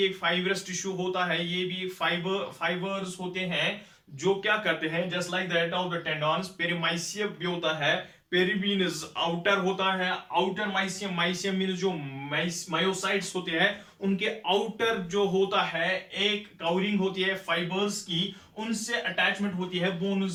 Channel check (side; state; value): both; identical; correlation 1.00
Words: एक फाइबरस टिश्यू होता है. ये भी फाइबर्स होते हैं जो क्या करते हैं, just like that of the tendons. Perimysium भी होता है. पेरी मीन्स आउटर होता है. आउटर माइसियम मीन्स जो मायोसाइट्स होते हैं उनके आउटर जो होता है एक कवरिंग होती है फाइबर्स की, उनसे अटैचमेंट होती है